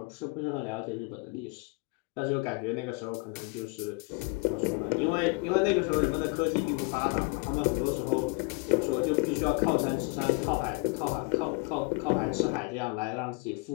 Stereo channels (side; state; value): right; quieter; 28.9 dB